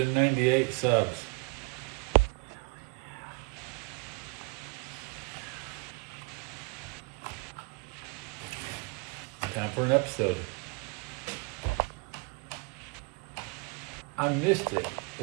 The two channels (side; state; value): left; quieter; 27.0 dB